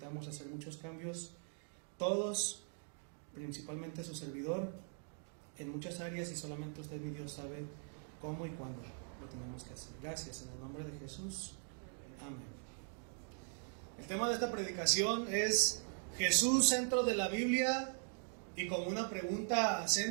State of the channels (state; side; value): silent; left; 51 dB below the other